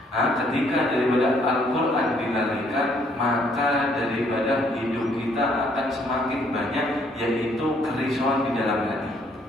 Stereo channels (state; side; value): normal; both; correlation 0.66